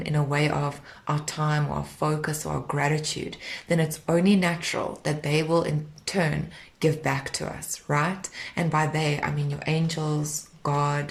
in a way of our time or our focus or our gratitude, then it's only natural that they will in turn give back to us, right? And by they, I mean your angels,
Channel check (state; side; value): identical; both; correlation 1.00